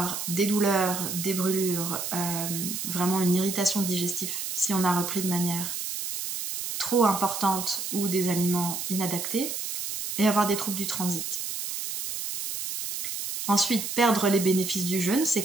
des douleurs, des brûlures, vraiment une irritation digestive si on a repris de manière trop importante ou des aliments inadaptés, et avoir des troubles du transit. Ensuite, perdre les bénéfices du jeûne, c'est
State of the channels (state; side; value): noise; right; hiss, 4 dB below the sound